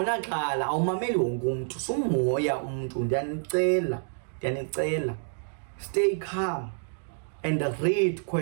awumameli wonke umuntu, sumoya umuntu. Ndiyanicela. Stay calm and read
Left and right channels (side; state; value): left; silent; digital silence